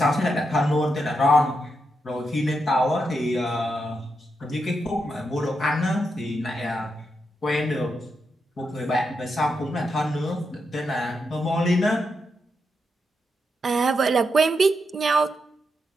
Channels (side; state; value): both; normal; correlation 0.84